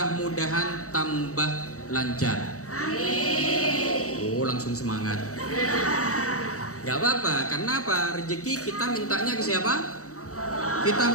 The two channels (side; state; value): right; late; 0.65 ms